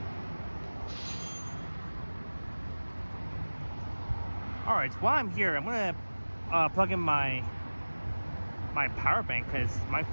All right. While I'm here, I'm gonna plug in my power bank because my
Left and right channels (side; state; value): both; inverted; correlation -1.00